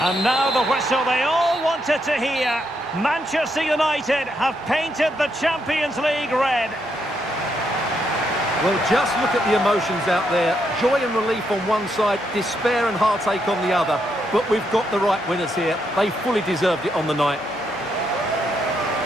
And now the whistle they all wanted to hear. Manchester United have painted the Champions League red. Well, just look at the emotions out there. Joy and relief on one side, despair and heartache on the other. But we've got the right winners here. They fully deserved it on the night.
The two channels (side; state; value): both; normal; correlation 0.78